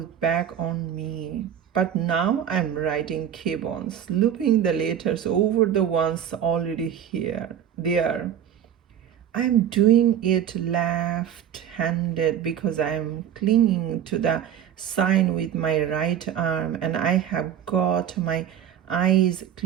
back on me. But now I'm writing K-Bones, looping the letters over the ones already there. I'm doing it left-handed because I'm clinging to the sign with my right arm and I have got my eyes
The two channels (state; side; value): quieter; left; 9.6 dB